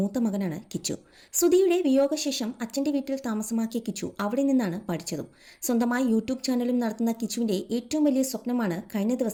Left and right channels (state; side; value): identical; both; correlation 1.00